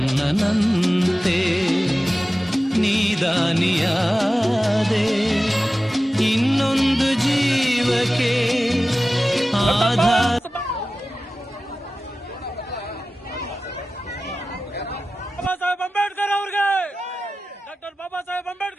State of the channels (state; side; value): normal; both; correlation 0.95